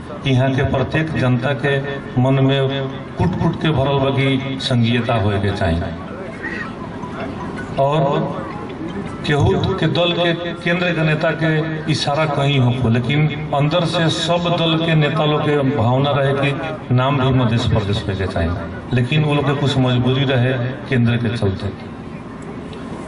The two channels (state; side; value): identical; both; correlation 1.00